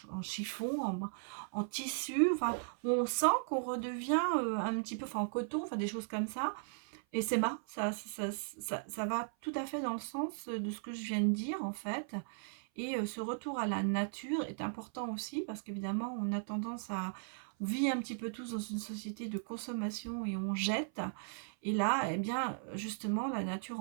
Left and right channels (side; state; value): left; silent; 53 dB below the other